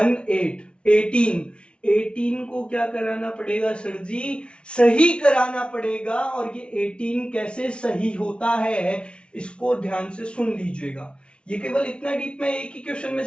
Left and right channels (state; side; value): late; right; 0.058 ms